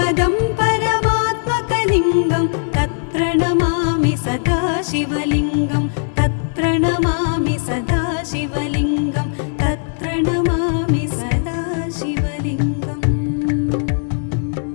परमात्मकलिङ्गं तत्प्रणमामि सदा शिवलिङ्गं तत्प्रणमामि सदा शिवलिङ्गं तत्प्रणमामि सदा शिवलिङ्गम्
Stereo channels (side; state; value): right; silent; digital silence